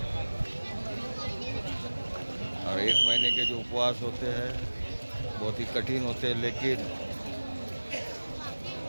اور ایک مہینے کے جو اپواس ہوتے ہیں بہت ہی کٹھن ہوتے ہیں، لیکن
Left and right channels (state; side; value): inverted; both; correlation -1.00